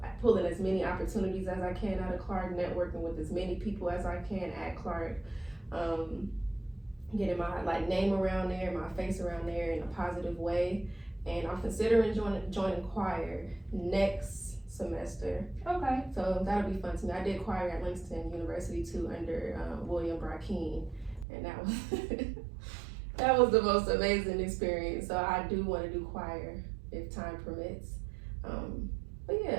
as many opportunities as I can out of Clark, networking with as many people as I can at Clark, getting my like name around there, my face around there in a positive way. And I'm considering joining choir next semester. Okay. So that'll be fun to me. I did choir at Langston University too under William Brackeen, and that was that was the most amazing experience. So I do want to do choir if time permits. But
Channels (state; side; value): drops out; left; at 21.2 s